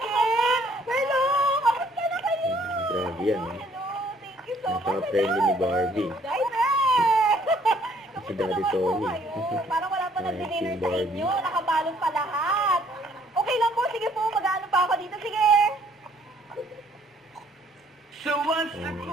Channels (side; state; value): both; normal; correlation 0.63